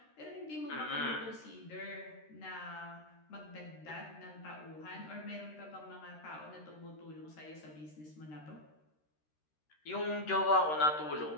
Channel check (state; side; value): late; right; 13 ms